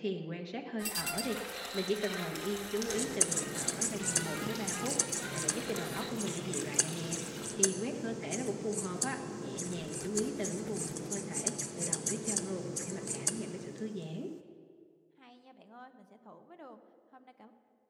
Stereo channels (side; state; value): both; identical; correlation 1.00